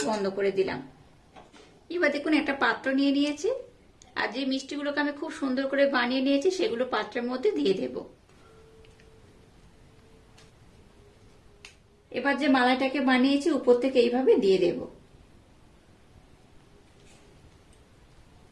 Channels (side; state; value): both; identical; correlation 1.00